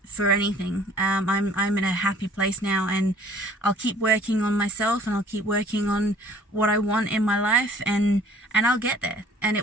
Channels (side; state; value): both; normal; correlation 0.53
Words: for anything. I'm in a happy place now, and I'll keep working on myself, and I'll keep working on what I want in my life, and I'll get there, and